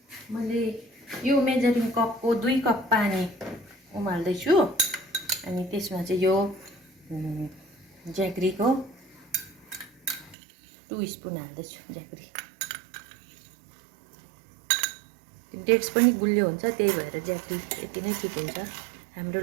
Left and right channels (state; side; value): drops out; left; at 10.4 s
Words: मैले यो मेजरिङ कपको 2 कप पानी उमाल्दैछु। अनि त्यसमा चाहिँ यो ज्यागरीको 2 स्पुन हाल्दैछु। ज्यागरी डेट्स पनि गुलियो हुन्छ, त्यही भएर ज्यागरी यति नै ठिक हुन्छ हाम्रो